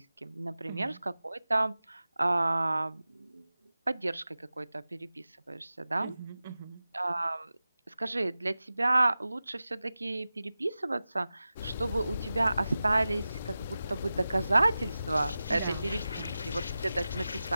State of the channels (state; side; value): inverted; both; correlation -0.95